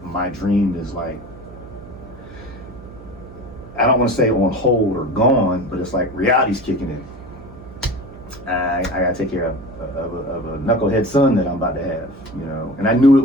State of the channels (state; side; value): noise; right; hum, 17 dB below the sound